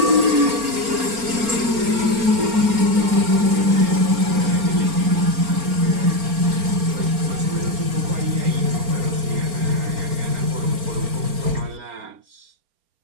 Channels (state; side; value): late; left; 4.4 ms